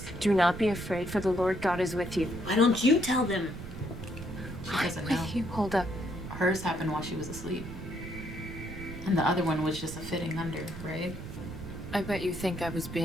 Do not be afraid, for the Lord God is with you. Why don't you tell them? She doesn't With know. you, Hulda. Hers happened while she was asleep. And the other one was just a fitting under, right? I bet you think I was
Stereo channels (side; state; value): right; noise; rumble, 11 dB below the sound